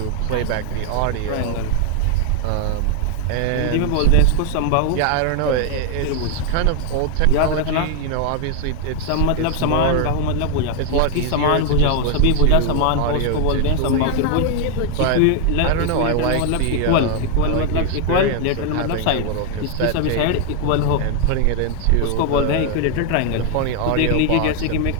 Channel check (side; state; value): both; different; correlation 0.00